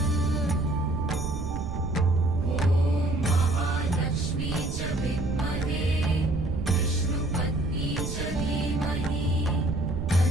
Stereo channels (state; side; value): noise; right; rumble, 4 dB below the sound